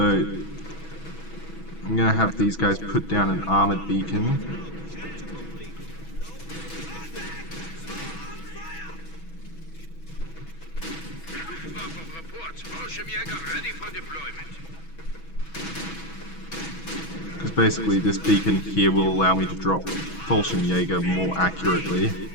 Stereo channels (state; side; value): late; right; 6.1 ms